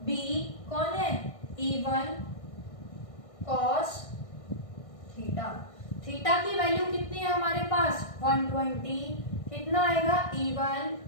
b कौन है E1 cos थीटा। थीटा की वैल्यू कितनी है हमारे पास 120, कितना आएगा E1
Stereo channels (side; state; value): right; late; 1.6 ms